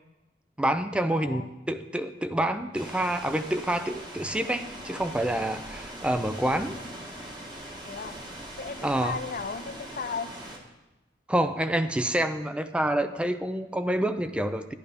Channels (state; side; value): normal; both; correlation 0.75